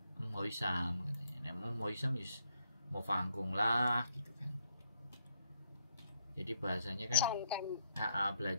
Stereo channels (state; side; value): inverted; both; correlation -0.76